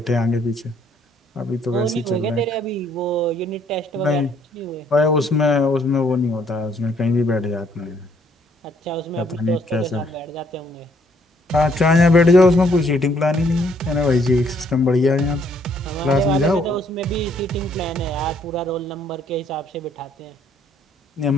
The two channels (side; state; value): both; normal; correlation 0.67